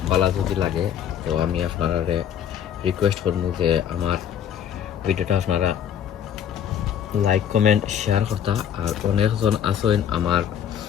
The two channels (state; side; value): quieter; right; 9.2 dB